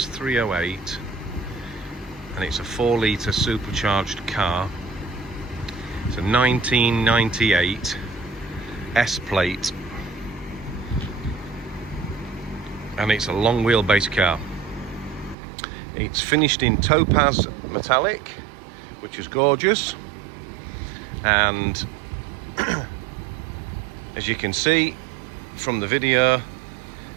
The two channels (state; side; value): drops out; left; at 15.4 s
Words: and it's a 4-litre supercharged car. It's a 1998 S-plate, and it's a long wheelbase car. It's finished in topaz metallic, which is gorgeous, and as you can see from the video,